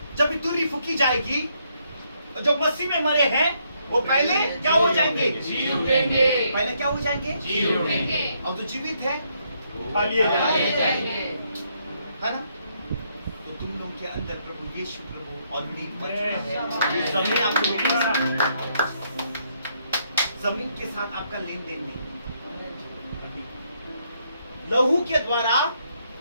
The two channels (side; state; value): both; inverted; correlation -0.74